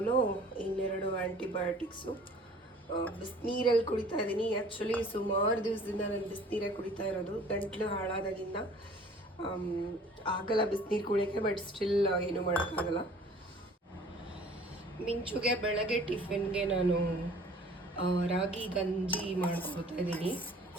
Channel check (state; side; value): normal; both; correlation 0.50